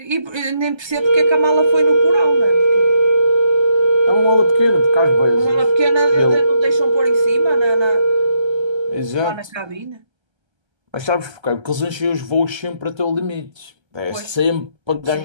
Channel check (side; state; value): left; late; 1.3 ms